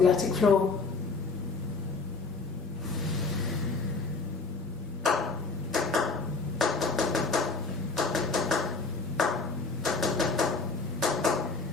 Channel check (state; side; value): quieter; right; 4.1 dB